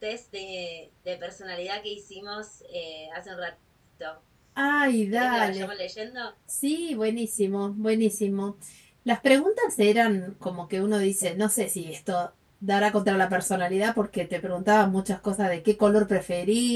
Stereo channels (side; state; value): both; identical; correlation 1.00